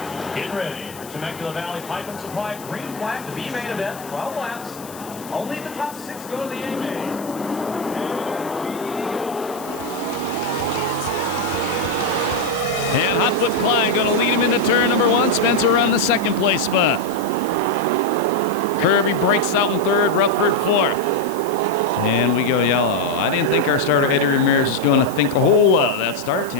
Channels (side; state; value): left; noise; hiss, 17 dB below the sound